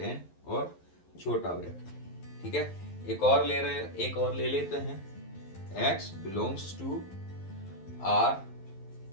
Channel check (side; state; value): right; late; 11 ms